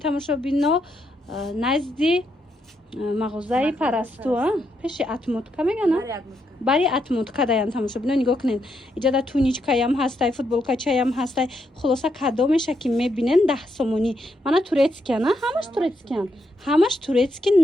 назди мағозаи парасту пеши атмотка мегана бари атмотка даян тамошобино нигоҳ кунед иҷада туничкаям ҳастай футболкачаям ҳастай хулоса кадомеша ки мебинен 10 сомонӣ мана турецкиян ҳамаш турецки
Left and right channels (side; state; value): both; normal; correlation 0.79